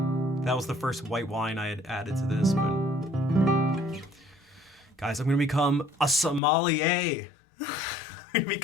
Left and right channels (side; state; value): right; drops out; at 6.4 s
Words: That was the first white wine I had added to this, but guys, I'm gonna become a sommelier. I'm gonna